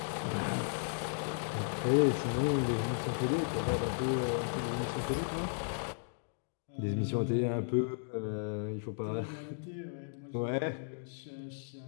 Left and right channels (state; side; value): silent; right; digital silence